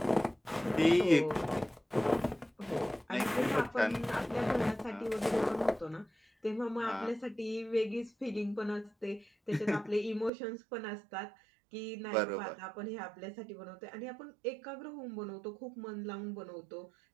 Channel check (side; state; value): left; drops out; at 10.3 s